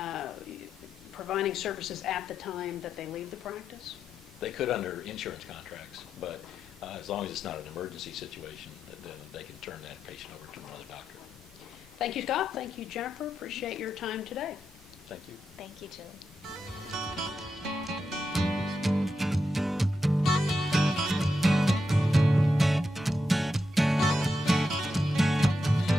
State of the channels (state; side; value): normal; both; correlation 0.86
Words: providing services at the time that they leave the practice? They could under insurance contracts, but as long as it's not an emergency situation, then they can turn that patient over to another doctor. Thank you, Scott. Thank you, Jennifer. Appreciate your time today. Thank you. Thank you, Julie.